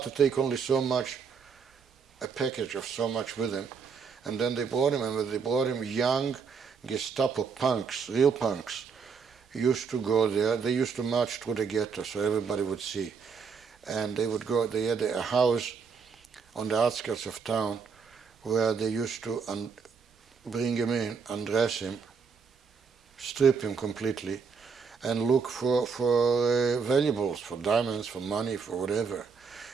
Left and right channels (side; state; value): left; quieter; 5.6 dB